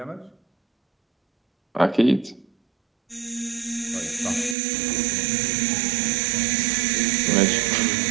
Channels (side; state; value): left; drops out; at 4.5 s